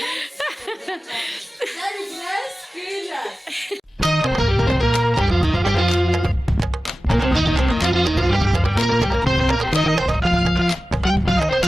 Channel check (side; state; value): both; normal; correlation 0.95